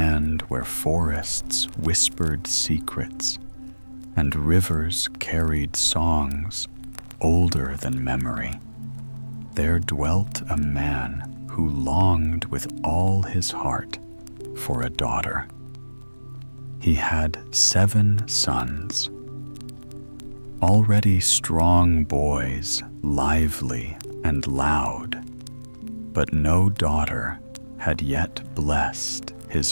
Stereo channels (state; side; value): inverted; both; correlation -1.00